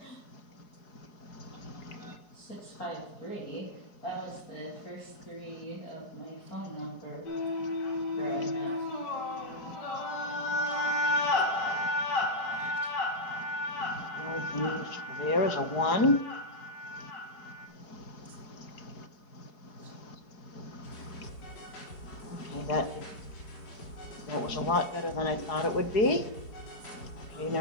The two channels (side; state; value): right; late; 4.8 ms